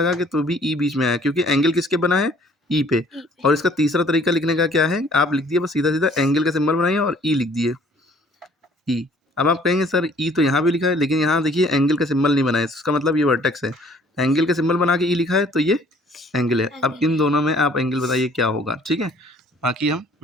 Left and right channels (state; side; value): normal; both; correlation 0.57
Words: के तो भी ई बीच में आया, क्योंकि एंगल किसके बना है, ई पे। और इसका तीसरा तरीका लिखने का क्या है, आप लिख दिए बस सीधा सीधा एंगल का सिंबल बनाइए और ई लिख दिए, ई। अब आप कहेंगे सर ई तो यहाँ भी लिखा है, लेकिन यहाँ देखिए एंगल का सिंबल नहीं बनाया, इसका मतलब ये वर्टेक्स है। एंगल का सिंबल बना के ई लिखा है तो ये एंगल है। अब इन दोनों में आप एंगल बताइए क्या होगा। ठीक है, बाकी हम